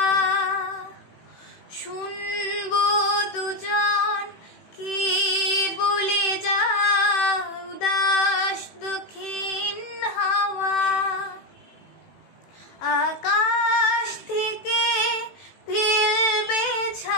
শুনবো দুজন কি বলে যায় উদাস দক্ষিণ হাওয়া। আকাশ থেকে ফেলবে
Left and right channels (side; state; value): right; late; 18 ms